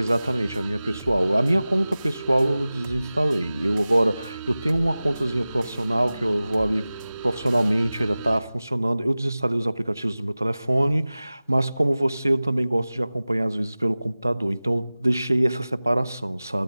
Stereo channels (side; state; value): both; inverted; correlation -0.97